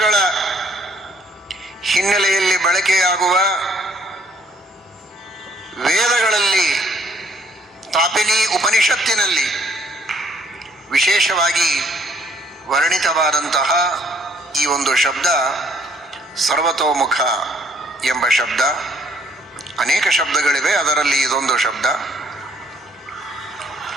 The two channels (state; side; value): normal; both; correlation 0.64